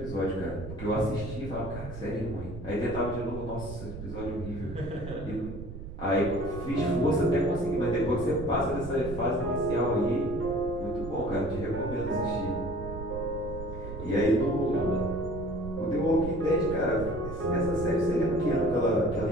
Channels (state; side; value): noise; right; rumble, 10 dB below the sound